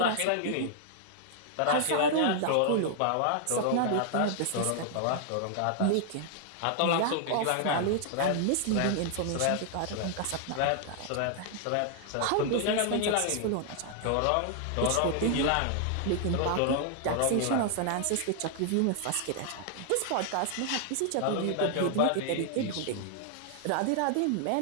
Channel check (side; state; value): both; different; correlation 0.00